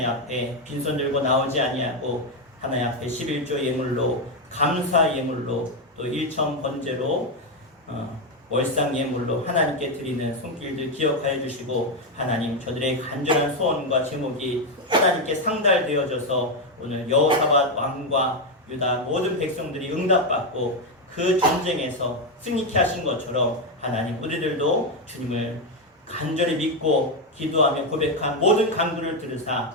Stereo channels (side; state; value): both; normal; correlation 0.06